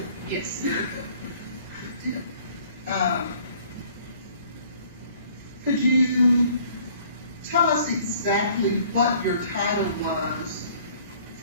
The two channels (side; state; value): both; inverted; correlation -0.56